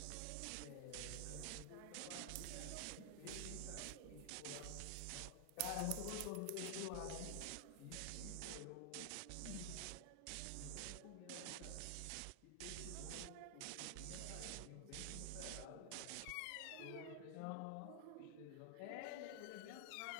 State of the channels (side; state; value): both; different; correlation 0.00